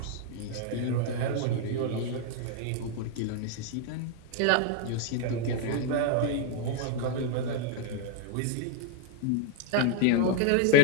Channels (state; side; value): different; both; correlation 0.00